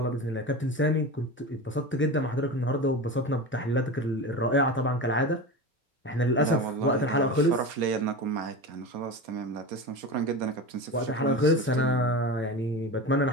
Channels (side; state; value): both; normal; correlation 0.27